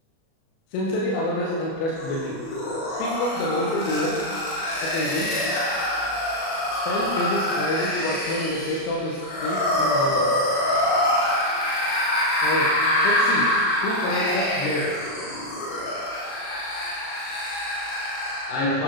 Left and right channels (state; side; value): late; right; 37 ms